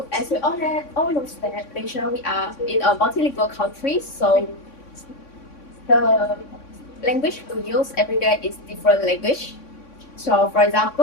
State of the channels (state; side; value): late; right; 3.6 ms